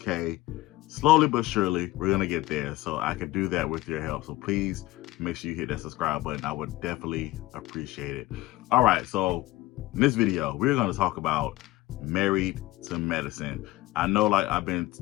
slowly but surely. We're gonna get there, so I can do that with your help. So please make sure you hit that subscribe button. I would definitely appreciate it. All right, so in this video, we're gonna talk about Married to Medicine. I know, like I've been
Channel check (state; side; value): quieter; right; 17.8 dB